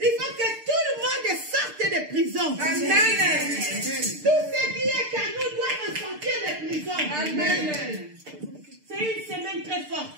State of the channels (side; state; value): left; late; 6.7 ms